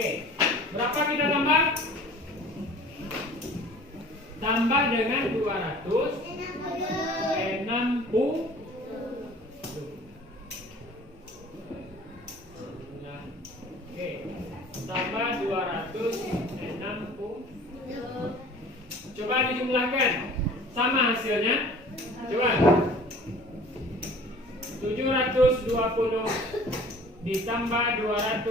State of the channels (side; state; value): both; normal; correlation 0.47